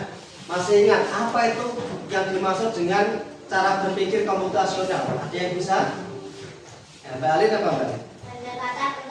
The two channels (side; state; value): both; identical; correlation 1.00